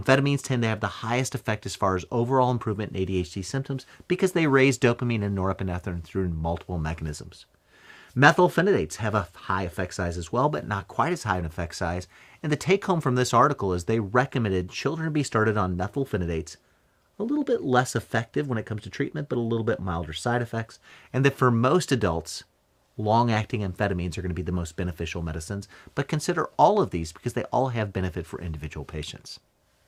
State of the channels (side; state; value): both; identical; correlation 1.00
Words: tend to have the highest effect as far as overall improvement in ADHD symptoms because they raise dopamine and norepinephrine through multiple mechanisms. Methylphenidates have a high effect size as well, but not quite as high an effect size. And the take-home from this article is they recommended children be started on methylphenidates, a little bit less effective when it comes to treatment, but a little bit milder side effects. And that for most adults, long-acting amphetamines are going to be the most beneficial medicines, but consider all of these because they all have benefit for individual patients.